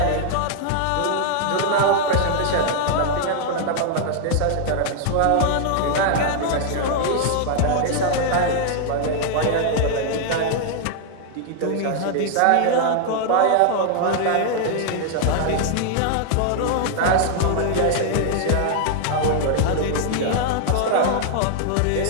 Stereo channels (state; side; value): different; both; correlation 0.00